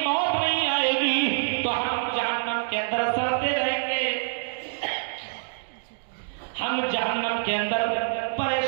موت نہیں آئے گی تو ہم جہنم کے اندر سڑتے رہیں گے، ہم جہنم کے اندر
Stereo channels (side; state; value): left; silent; digital silence